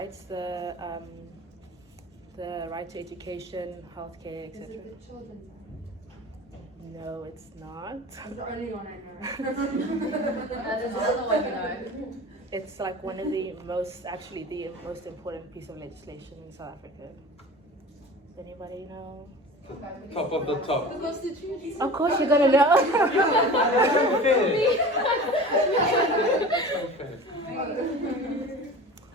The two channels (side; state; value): both; normal; correlation 0.37